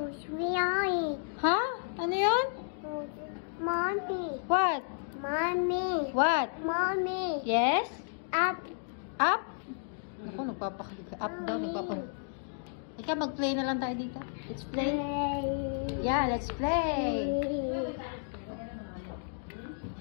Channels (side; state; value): right; silent; digital silence